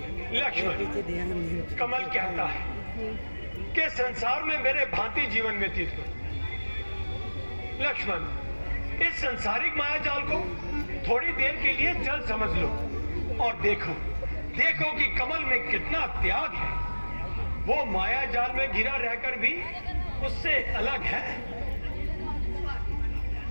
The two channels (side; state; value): both; inverted; correlation -1.00